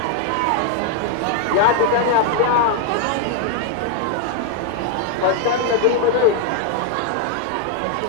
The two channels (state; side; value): different; both; correlation 0.01